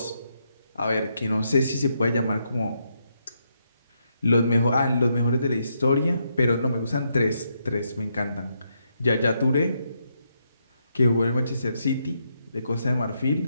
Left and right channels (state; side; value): inverted; both; correlation -0.79